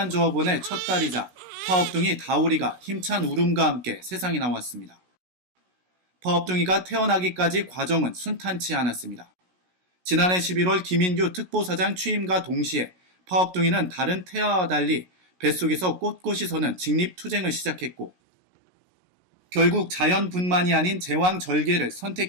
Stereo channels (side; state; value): left; late; 16 ms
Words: 조합원의 첫 딸이자 파업둥이 다오리가 힘찬 울음과 함께 세상에 나왔습니다. 파업둥이가 태어나기까지 과정은 순탄치 않았습니다. 지난해 11월 김인규 특보사장 취임과 동시에 파업둥이는 다른 태아와 달리 뱃속에서 꼿꼿이 서는 직립투쟁을 시작했고 결국 자연분만이 아닌 제왕절개를